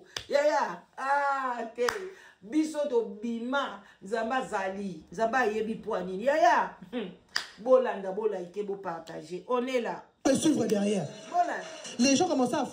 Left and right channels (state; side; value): identical; both; correlation 1.00